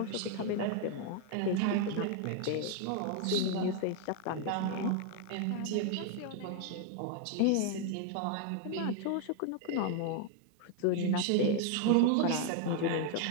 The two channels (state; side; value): different; both; correlation 0.01